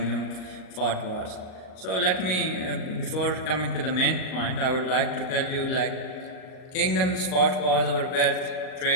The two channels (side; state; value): right; late; 38 ms